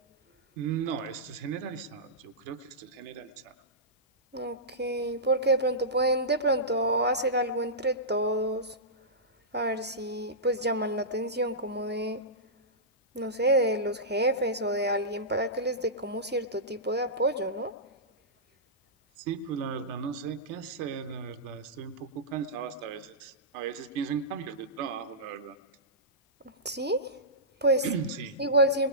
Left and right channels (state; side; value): normal; both; correlation -0.15